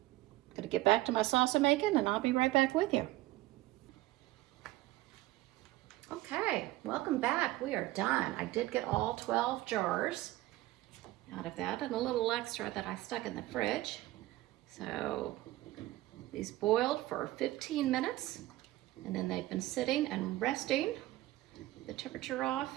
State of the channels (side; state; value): left; quieter; 17.5 dB